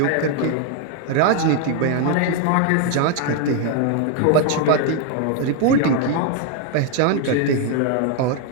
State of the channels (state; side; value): different; both; correlation 0.01